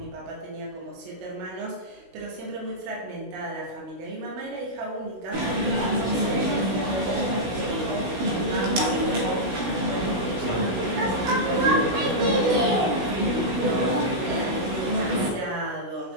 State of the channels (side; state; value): left; late; 16 ms